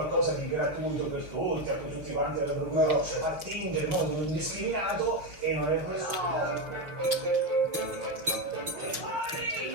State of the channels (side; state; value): left; late; 5.7 ms